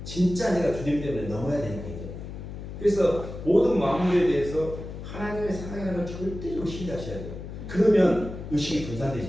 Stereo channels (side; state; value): left; noise; hum, 10 dB below the sound